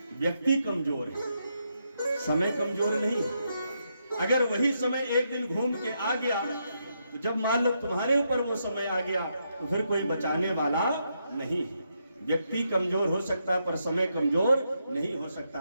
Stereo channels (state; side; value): inverted; both; correlation -0.80